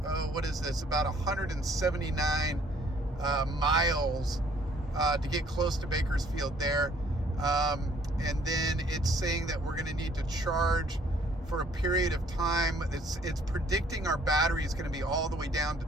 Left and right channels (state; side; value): normal; both; correlation 0.61